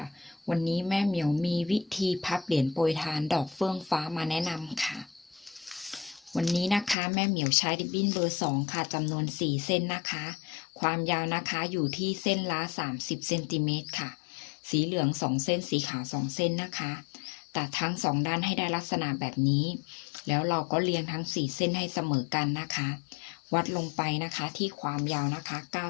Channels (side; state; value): right; drops out; at 7.0 s